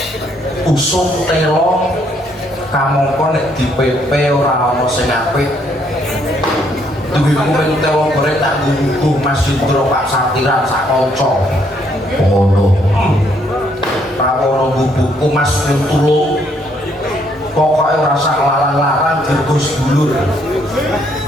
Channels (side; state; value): both; normal; correlation 0.69